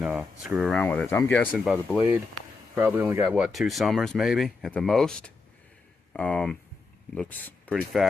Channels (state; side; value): quieter; right; 4.1 dB